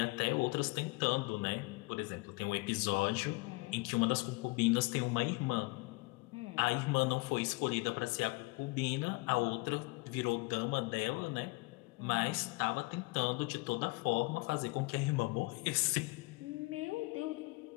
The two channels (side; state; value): right; quieter; 25.2 dB